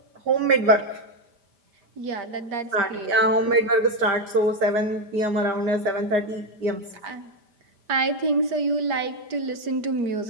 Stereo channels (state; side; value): late; left; 5.0 ms